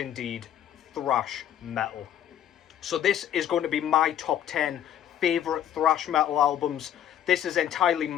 thrash metal. So this is going to be my top 10 favourite thrash metal albums. This is entirely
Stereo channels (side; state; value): right; quieter; 10.5 dB